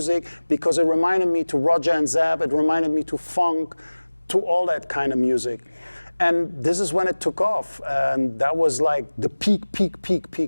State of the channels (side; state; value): both; inverted; correlation -1.00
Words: because it reminded me to Roger and Zab, it reminded me to funk, to all that kind of music. And this is when it took off, and that was like the peak.